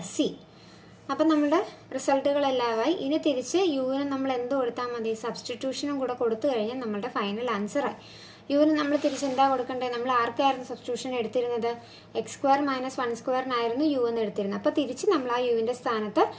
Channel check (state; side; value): identical; both; correlation 1.00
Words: c. അപ്പം നമ്മുടെ റിസൾട്ടുകളെല്ലാമായി. ഇനി തിരിച്ച് യുവിന് നമ്മൾ എന്ത് കൊടുത്താൽ മതി? സബ്സ്റ്റിറ്റ്യൂഷനും കൂടെ കൊടുത്തു കഴിഞ്ഞാൽ നമ്മളുടെ ഫൈനൽ ആൻസറായി. യുവിന് നമ്മൾ തിരിച്ച് എന്താ കൊടുക്കേണ്ടത്? നമ്മൾ ആർക്കായിരുന്നു സബ്സ്റ്റിറ്റ്യൂഷൻ എടുത്തിരുന്നത്? x² - 1² യു എന്ന് എടുത്തിരുന്നത്. അപ്പോൾ തിരിച്ച് നമ്മൾ ആ യുവിൻ്റെ സ്ഥാനത്ത്